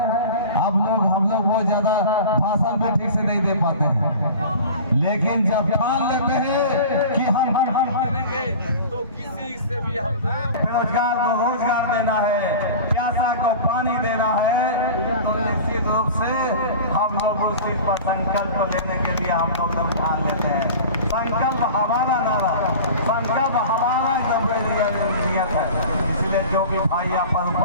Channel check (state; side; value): inverted; both; correlation -0.36